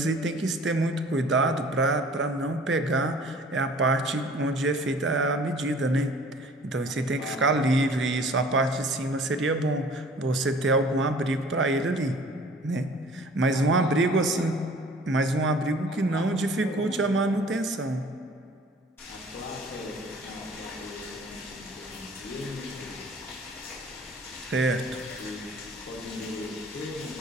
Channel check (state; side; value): normal; both; correlation 0.49